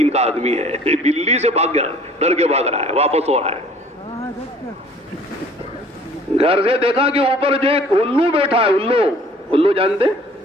کا آدمی ہے، بلی سے بھاگ گیا، ڈر کے بھاگ رہا ہے، واپس ہو رہا ہے۔ گھر سے دیکھا کہ اوپر جو ایک الو بیٹھا ہے، الو جانتے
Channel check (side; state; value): both; normal; correlation 0.53